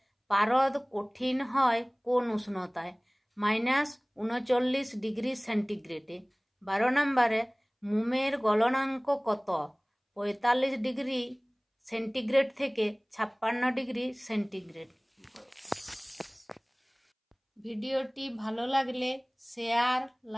পারদ কঠিন হয় কোন উষ্ণতায়? -39 ডিগ্রি সেন্টিগ্রেডে। 12 নম্বরে, মোমের গলনাঙ্ক কত? 45 ডিগ্রি সেন্টিগ্রেড থেকে 56 ডিগ্রি সেন্টিগ্রেড। ভিডিওটি ভালো লাগলে শেয়ার,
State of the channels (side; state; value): both; identical; correlation 1.00